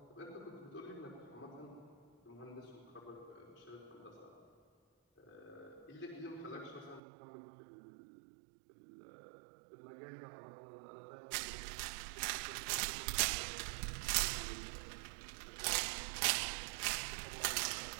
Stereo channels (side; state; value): left; drops out; at 7.0 s